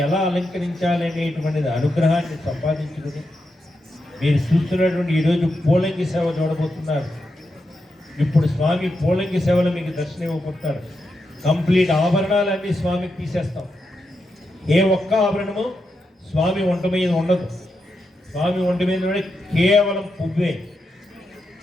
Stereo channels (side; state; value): both; normal; correlation 0.86